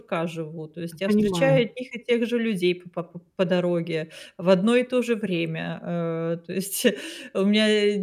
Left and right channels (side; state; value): both; identical; correlation 1.00